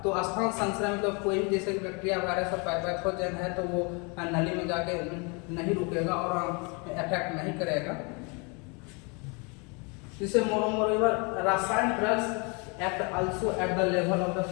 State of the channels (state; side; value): quieter; right; 32.1 dB